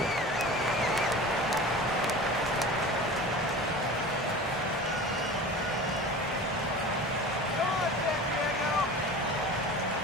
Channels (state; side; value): normal; both; correlation 0.35